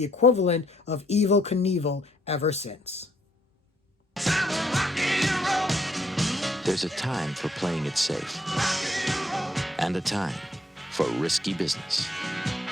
equivalent of Evel Knievel ever since. There's a time for playing it safe, and a time for risky business.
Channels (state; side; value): normal; both; correlation 0.68